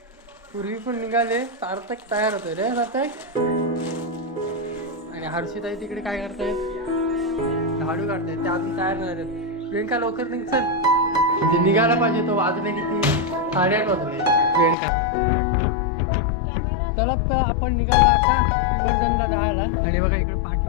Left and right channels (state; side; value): drops out; right; at 14.8 s